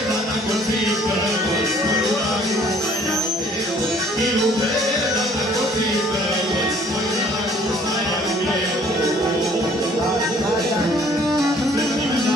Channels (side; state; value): both; normal; correlation 0.58